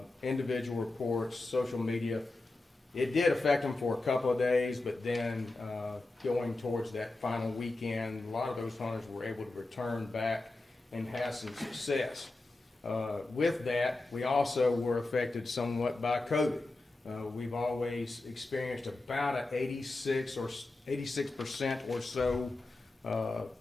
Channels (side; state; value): right; quieter; 3.1 dB